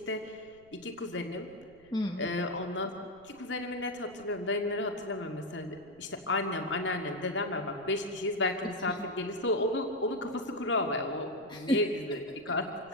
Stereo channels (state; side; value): noise; right; rumble, 27 dB below the sound